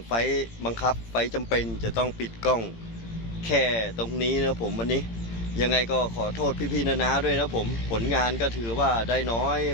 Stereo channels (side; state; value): right; late; 18 ms